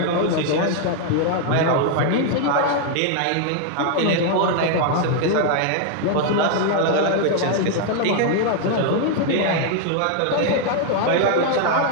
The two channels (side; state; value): both; different; correlation 0.00